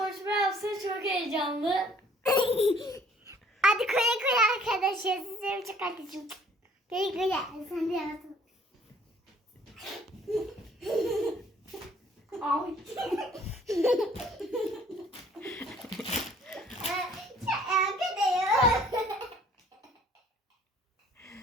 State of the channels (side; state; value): both; normal; correlation 0.58